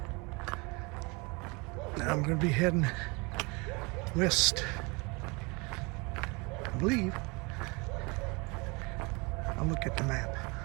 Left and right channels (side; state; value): left; quieter; 28.2 dB